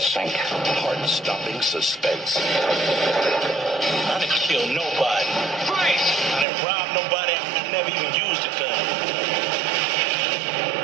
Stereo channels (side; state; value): left; drops out; at 6.5 s